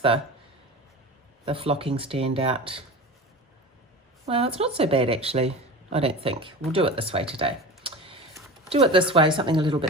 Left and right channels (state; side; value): normal; both; correlation 0.32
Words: flocking stand out. Well, it's not so bad actually, I don't think. We'll do it this way today. Do it this way, something a little